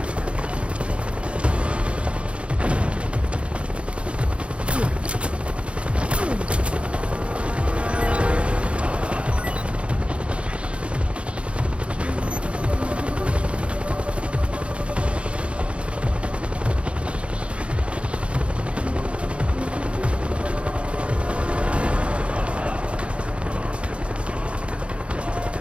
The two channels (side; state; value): left; late; 0.060 ms